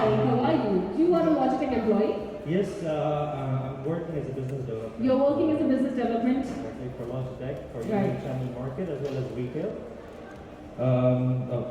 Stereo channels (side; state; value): both; identical; correlation 1.00